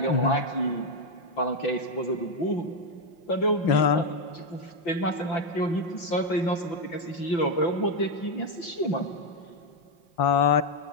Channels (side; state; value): right; late; 5.7 ms